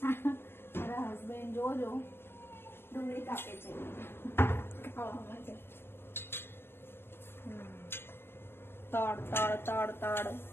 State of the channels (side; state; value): right; late; 0.11 ms